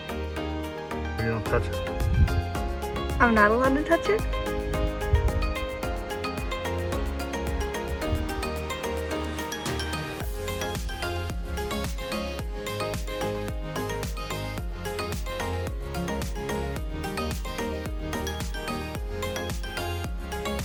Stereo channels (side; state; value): both; identical; correlation 1.00